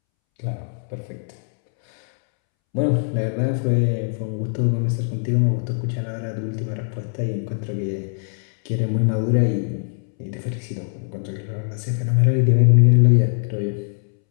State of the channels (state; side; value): silent; right; 64 dB below the other